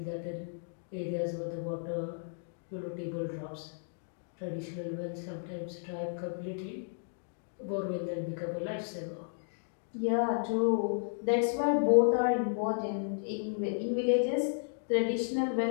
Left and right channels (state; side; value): silent; right; digital silence